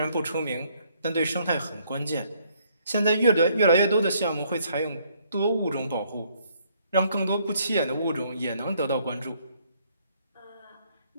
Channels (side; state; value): both; inverted; correlation -0.67